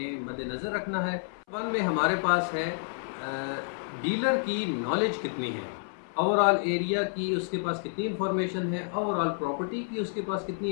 मद्देनज़र रखना है। वन में हमारे पास है डीलर की नॉलेज कितनी है, ओवरऑल एरिया की उसके पास कितनी इन्फॉर्मेशन है, ओवरऑल प्रॉपर्टी की उसके पास कितनी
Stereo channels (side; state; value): right; silent; 58 dB below the other